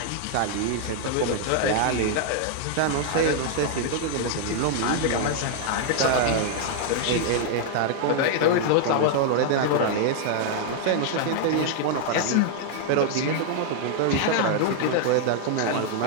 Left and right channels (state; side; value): different; both; correlation 0.00